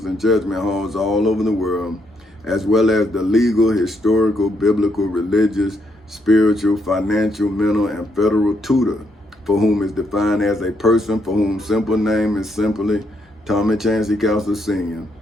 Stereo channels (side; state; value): both; normal; correlation 0.76